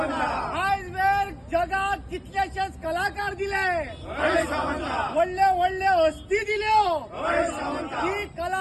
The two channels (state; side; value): identical; both; correlation 1.00